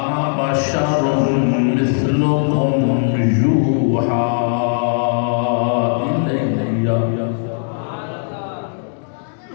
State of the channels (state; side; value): silent; right; digital silence